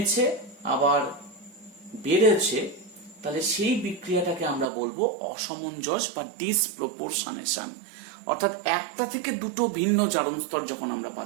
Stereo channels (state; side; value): drops out; left; at 4.7 s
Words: আবার বেড়েছে, তাহলে সেই বিক্রিয়াটাকে আমরা বলবো অসমঞ্জস বা ডিসপ্রপোর্শনেশন। অর্থাৎ একটা থেকে দুটো ভিন্ন জারণ স্তর যখন আমরা